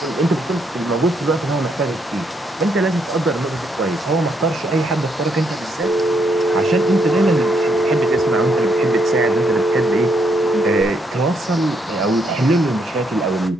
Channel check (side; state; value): both; normal; correlation 0.75